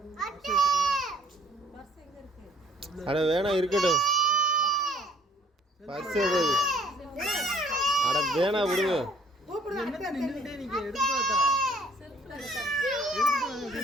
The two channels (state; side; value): normal; both; correlation 0.59